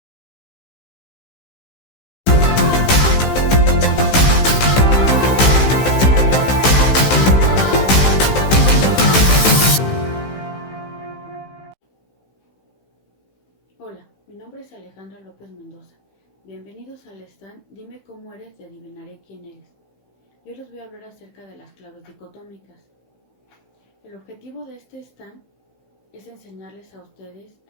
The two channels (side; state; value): right; late; 15 ms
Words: Hola, mi nombre es Alejandra López Mendoza. Bienvenidos al stand Dime cómo eres y adivinaré quién eres. Yo les voy a hablar acerca de las claves dicotómicas. El objetivo de este stand es enseñarles a ustedes